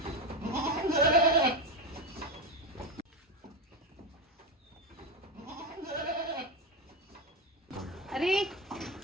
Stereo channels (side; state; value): both; normal; correlation 0.16